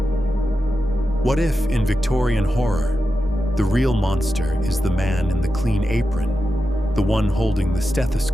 What if, in Victorian horror, the real monster is the man in the clean apron, the one holding the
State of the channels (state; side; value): normal; both; correlation 0.90